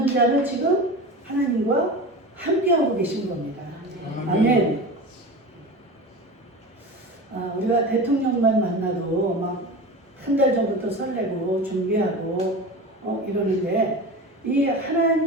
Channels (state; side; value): normal; both; correlation 0.30